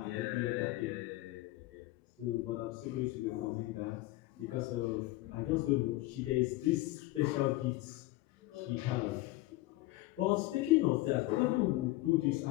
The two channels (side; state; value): right; quieter; 18.6 dB